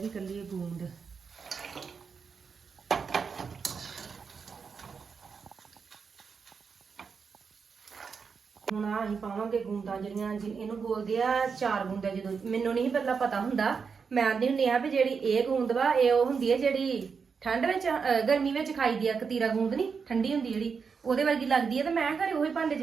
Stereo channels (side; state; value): left; quieter; 5.7 dB